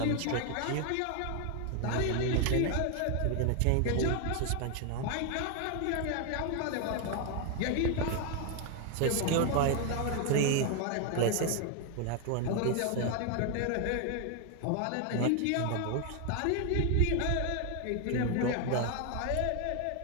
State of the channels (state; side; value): different; both; correlation 0.01